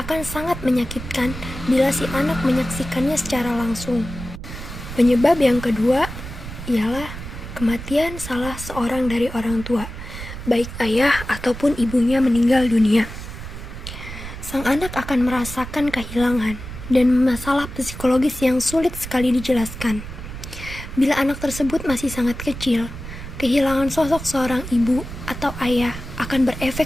sangat menyakitkan bila si anak menyaksikannya secara langsung. Penyebab yang kedua ialah kematian salah seorang dari orang tua, baik ayah ataupun ibunya meninggal dunia. Sang anak akan merasakan kehilangan dan masalah psikologis yang sulit sekali dijelaskan. Bila anak tersebut masih sangat kecil, kehilangan sosok seorang ibu atau ayah akan berefek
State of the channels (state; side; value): noise; right; rumble, 10 dB below the sound